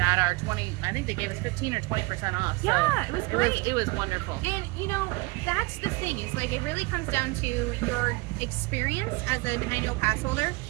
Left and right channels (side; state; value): left; quieter; 24.7 dB